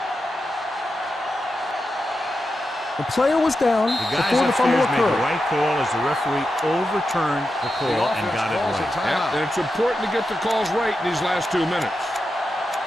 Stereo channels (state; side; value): normal; both; correlation 0.89